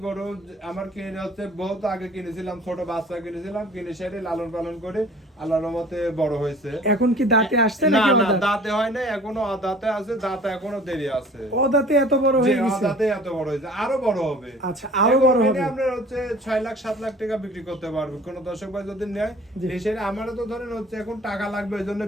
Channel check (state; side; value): normal; both; correlation 0.48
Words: গরু আমার কিনে হচ্ছে বহুত আগে কিনেছিলাম, ছোট বাচ্চা কিনেছিলাম, কিনে সেরে লালন পালন করে আল্লাহর রহমতে বড় হয়েছে। এখন কি দাঁতে আসছে না নাকি না, অদাঁত? দাঁতে হয় নাই, এখনো দাঁতে আছে, দাঁতে এখনো দেরি আছে। অদাঁতে এত বড় যে হয়ে গেছে? দাঁতে এত বড় হয়েছে, আরো বড় হবে। আচ্ছা, আরো বড় হবে। আপনার হচ্ছে 6 লাখ 7 লাখ টাকা বিক্রি করতে পারবে কোন দর্শক ভাই যদি নেয়। জি। এসে আমারও তো ধরেন হচ্ছে এখন টাকা লাগবে, এই জন্য